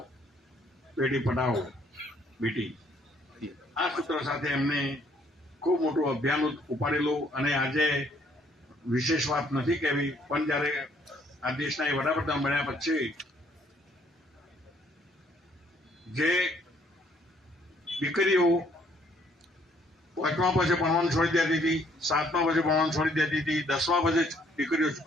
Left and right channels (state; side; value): normal; both; correlation 0.65